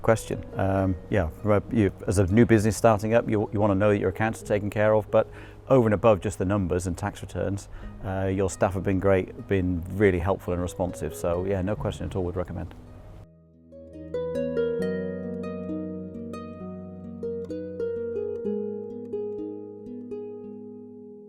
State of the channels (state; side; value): identical; both; correlation 1.00